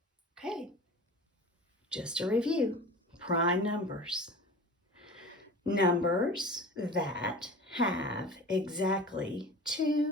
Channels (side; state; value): both; normal; correlation 0.37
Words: Okay. Just a review. Prime numbers. Numbers that have exactly